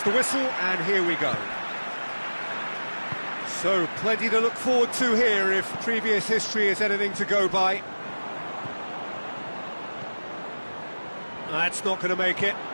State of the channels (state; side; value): inverted; both; correlation -1.00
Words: the whistle, and here we go. So, plenty to look forward to here if previous history is anything to go by. That's not going to make it.